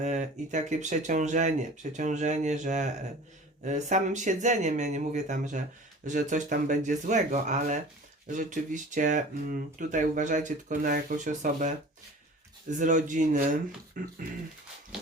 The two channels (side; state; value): both; normal; correlation 0.42